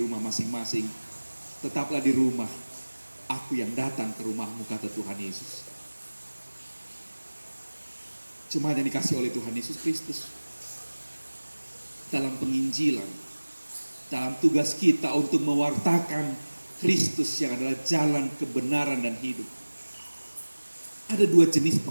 masing-masing. Tetaplah di rumah. Aku yang datang ke rumahmu, kata Tuhan Yesus. Jemaat yang dikasih oleh Tuhan Yesus Kristus, dalam penginjilan, dalam tugas kita untuk mewartakan Kristus yang adalah jalan kebenaran dan hidup, ada dua jenis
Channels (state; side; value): inverted; both; correlation -1.00